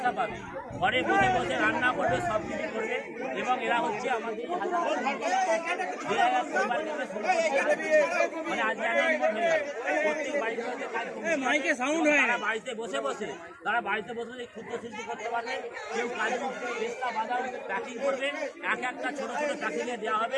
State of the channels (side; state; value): both; identical; correlation 1.00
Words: পাবে। ঘরে বসে বসে রান্না করবে, সব কিছু করবে এবং এরা হচ্ছে আমাদের মানে আজকে অ্যানাউন্সমেন্ট হয়ে যাবে। প্রত্যেক বাড়িতে বাড়িতে বসে বসে ক্ষুদ্র শিল্প করতে পারবে। কেউ কাজু পেস্তা বাদাম প্যাকিং করবে, এক একটা ছোট ছোট প্যাকিংয়ে দেওয়া